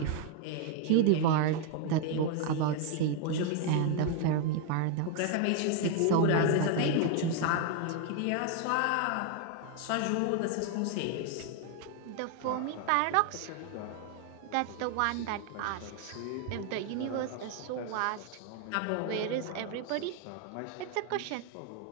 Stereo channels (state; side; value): different; both; correlation 0.01